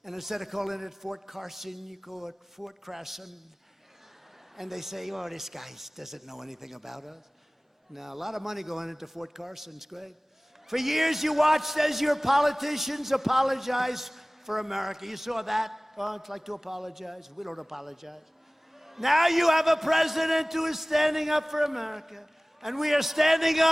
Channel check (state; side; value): normal; both; correlation 0.98